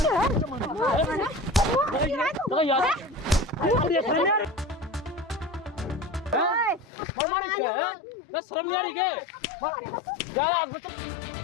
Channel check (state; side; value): drops out; right; at 6.9 s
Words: शर्म नहीं आ रही क्या?